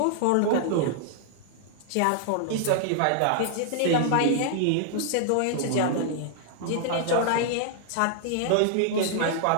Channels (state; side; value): different; both; correlation -0.01